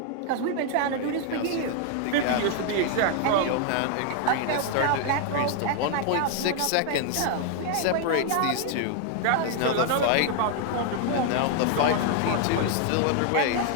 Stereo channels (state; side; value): different; both; correlation 0.00